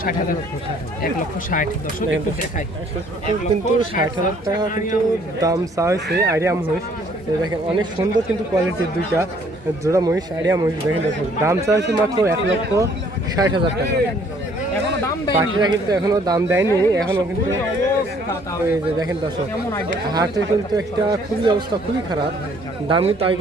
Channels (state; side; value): normal; both; correlation 0.61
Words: 1,60,000 দর্শক একটু দেখাই। কিন্তু 60,000 টাকা কিন্তু দাম চা হয়েছে আইডিয়া মহিষ। দেখেন অনেক সুন্দর কিন্তু কোয়ালিটির দুইটা জোড়া মহিষ, আইডিয়া মহিষ। দেখেন দর্শক দাম চা হয়েছে মাত্র 1,60,000 টাকা। বাকিরা কিন্তু এখনো দাম দেয়নি, এখনো কিন্তু এই যে দেখেন দর্শক হাটে কিন্তু একটা খুবই অবস্থা খুবই খারাপ। দাম কিন্তু